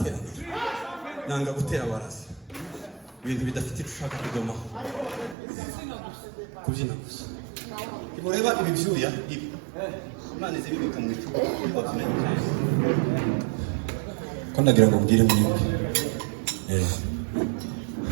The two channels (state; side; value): drops out; left; at 5.4 s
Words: Nanga gutera warazi. Ibintu bidafite ushaka kudomaho. Kubyina gusa. Imureba ibi byuya ibi. Imana izibika mu icupa. Ko ndagira ngo mbwire mwebwe.